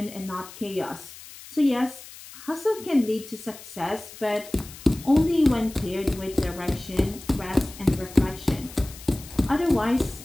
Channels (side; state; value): left; noise; hiss, 17 dB below the sound